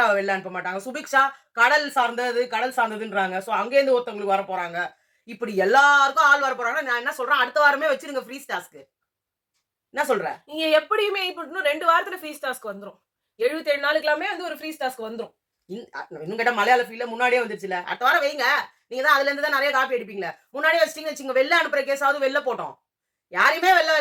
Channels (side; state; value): both; identical; correlation 1.00